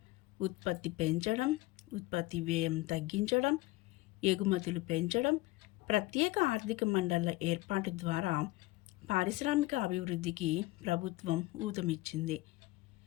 ఉత్పత్తి పెంచడం, ఉత్పత్తి వ్యయం తగ్గించడం, ఎగుమతులు పెంచడం, ప్రత్యేక ఆర్థిక మండళ్ల ఏర్పాటు ద్వారా పారిశ్రామిక అభివృద్ధికి ప్రభుత్వం ఊతమిచ్చింది.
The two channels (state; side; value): quieter; right; 19.8 dB